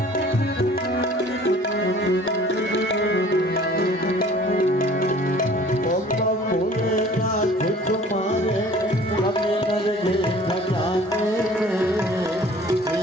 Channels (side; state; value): both; normal; correlation 0.50